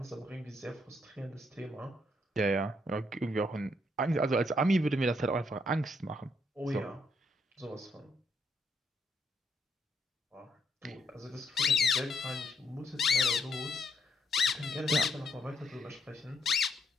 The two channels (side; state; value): both; normal; correlation 0.75